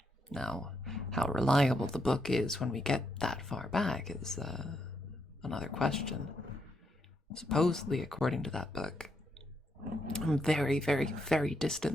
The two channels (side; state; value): both; normal; correlation 0.79